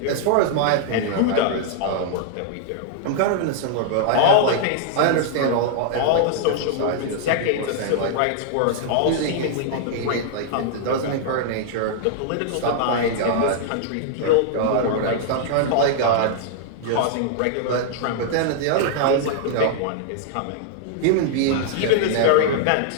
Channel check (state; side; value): different; both; correlation -0.01